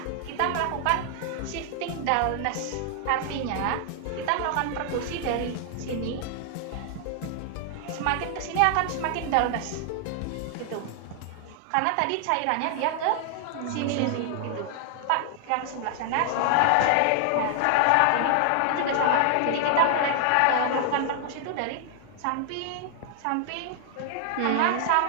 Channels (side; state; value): both; different; correlation 0.00